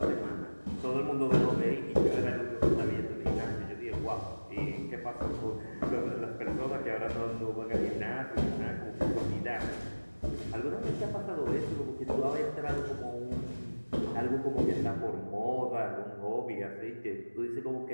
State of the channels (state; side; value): inverted; both; correlation -1.00